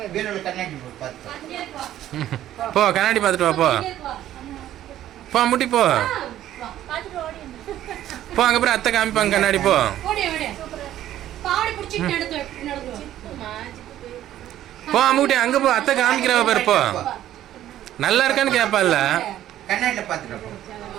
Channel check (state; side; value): quieter; left; 12.6 dB